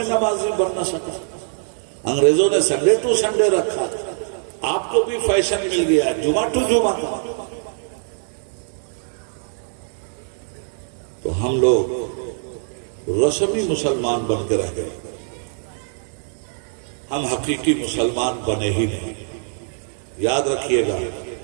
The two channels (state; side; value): silent; left; digital silence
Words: نمازی بن نہ سکا، انگریزوں نے سنڈے ٹو سنڈے رکھا، آپ کو بھی فیشن مل گیا جمعہ ٹو جمعہ کا۔ تو ہم لوگ رسمی مسلمان بن کے رہ گئے، ہم حقیقی مسلمان بنے ہی نہیں۔ یاد رکھیے گا،